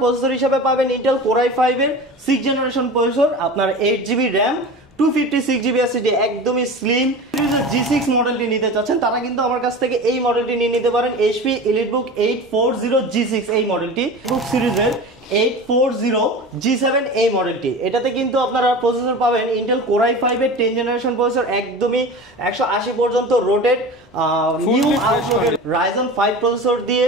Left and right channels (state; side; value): normal; both; correlation 0.33